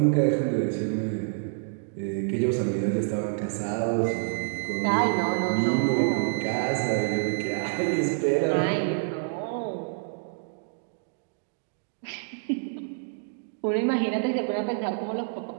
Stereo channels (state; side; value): silent; left; 60 dB below the other